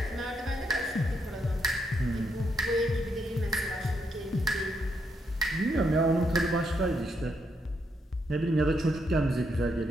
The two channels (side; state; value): both; normal; correlation 0.78